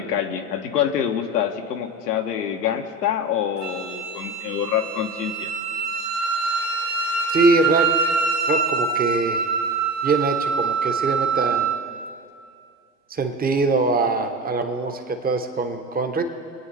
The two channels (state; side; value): normal; both; correlation 0.29